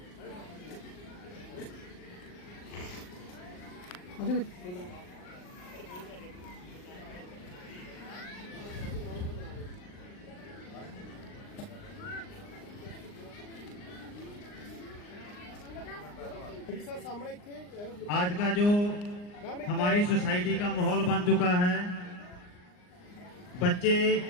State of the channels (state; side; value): late; right; 39 ms